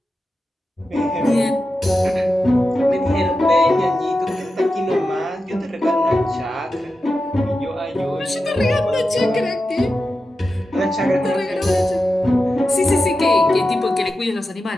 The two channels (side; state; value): both; normal; correlation 0.91